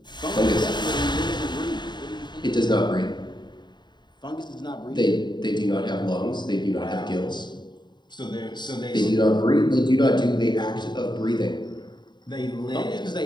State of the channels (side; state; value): right; late; 0.21 ms